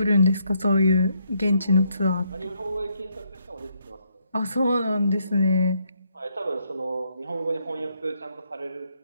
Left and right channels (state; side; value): inverted; both; correlation -0.74